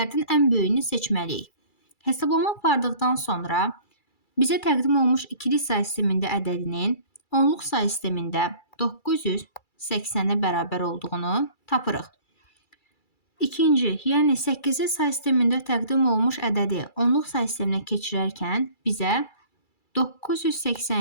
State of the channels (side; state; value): right; late; 2.3 ms